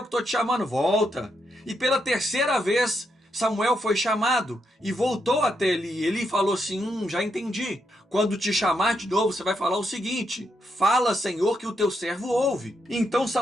que estou te chamando, volta. E pela terceira vez, Samuel foi chamado e voltou até Eli. Eli falou assim, já entendi. Quando te chamar de novo, você vai falar o seguinte, fala, Senhor, que o teu servo ouve. Então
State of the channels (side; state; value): both; normal; correlation 0.80